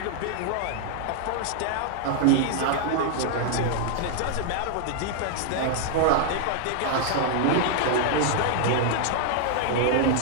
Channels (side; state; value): both; different; correlation 0.00